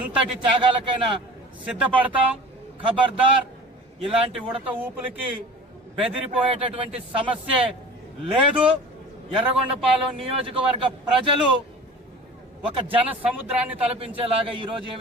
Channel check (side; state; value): both; normal; correlation 0.40